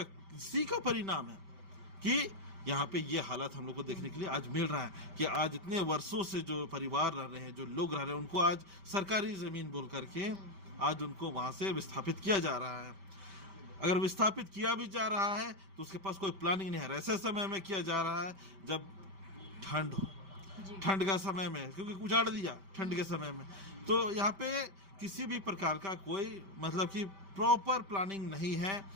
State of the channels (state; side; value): late; left; 5.1 ms